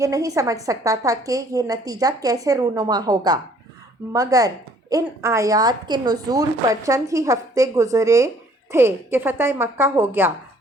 نہیں سمجھ سکتا تھا کہ یہ نتیجہ کیسے رونما ہوگا، مگر ان آیات کے نزول پر چند ہی ہفتے گزرے تھے کہ فتح مکہ ہو گیا۔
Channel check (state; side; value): normal; both; correlation 0.59